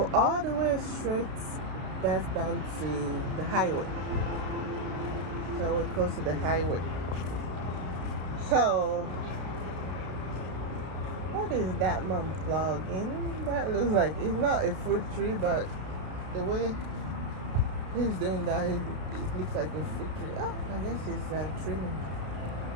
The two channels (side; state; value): left; late; 32 ms